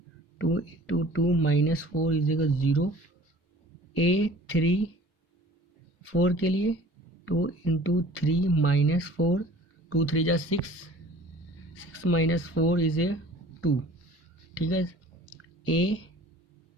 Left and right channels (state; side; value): normal; both; correlation 0.47